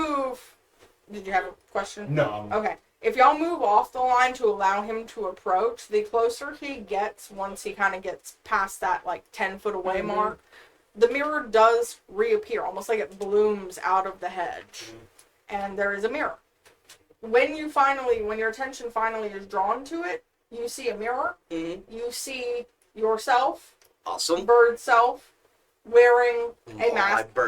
did you have a question? No. Okay. If y'all move off the line to allow him to approach, the closer he gets, once he kind of gets past that like 10-foot away mark, the mirror does reappear, almost like it blooms out of the hedge, and there is a mirror. When your attention finally is drawn to it, you see a mirror. Mhm. You see yourself, Awesome. bird self, wearing a My mask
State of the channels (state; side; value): identical; both; correlation 1.00